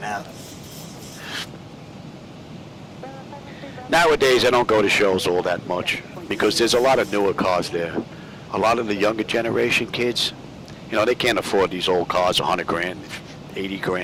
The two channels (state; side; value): identical; both; correlation 1.00